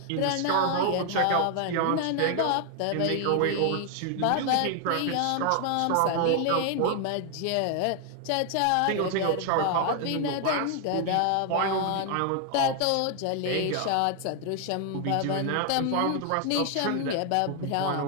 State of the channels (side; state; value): both; different; correlation 0.00